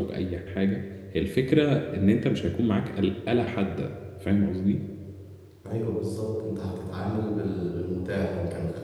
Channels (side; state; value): both; identical; correlation 1.00